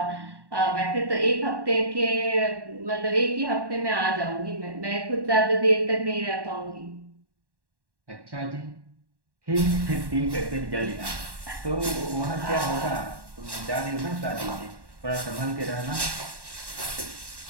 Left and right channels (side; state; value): left; late; 1.1 ms